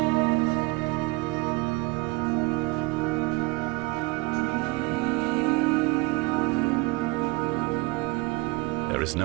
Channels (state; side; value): quieter; left; 24.8 dB